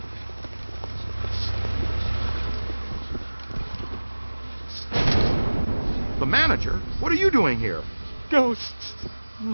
The manager? What are you doing here? Ghosts,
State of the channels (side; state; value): both; inverted; correlation -1.00